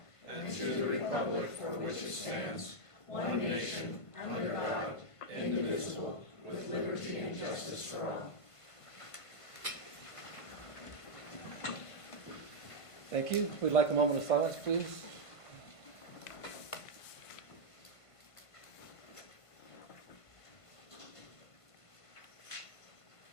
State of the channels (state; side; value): late; right; 1.5 ms